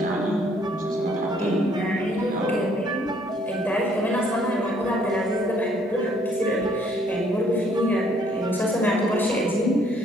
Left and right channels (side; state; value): both; normal; correlation 0.64